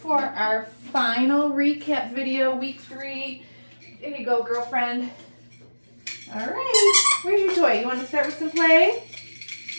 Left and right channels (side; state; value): both; inverted; correlation -1.00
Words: for our final recap video, week 3. There you go, girlfriend. All right, where's your toy? You want to start with some play?